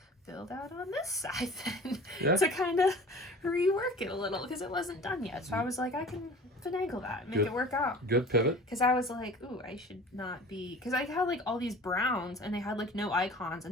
build out on this side then to kind of rework it a little because it wasn't done yet. So I was like, I can finagle that and make it work out. Good pivot. Because I was like, ooh, I should not be, because I had like all these browns and they had like no icons,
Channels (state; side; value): normal; both; correlation 0.42